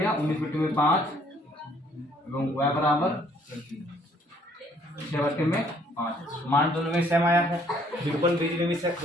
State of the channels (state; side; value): normal; both; correlation 0.63